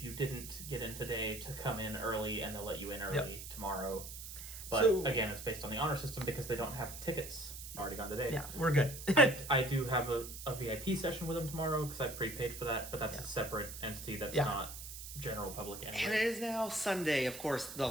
you didn't get in today to come in early and they'll let you in early tomorrow. But again, it's based on the honor system because they don't have tickets already gone today. Yeah, we're good. I do have a VIP session with them tomorrow because I prepaid for that, but that's a separate entity that's not general public anyway. And it is now Sunday, of course, the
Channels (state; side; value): noise; right; hiss, 10 dB below the sound